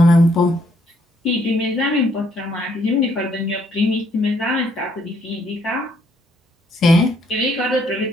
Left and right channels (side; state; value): both; normal; correlation 0.69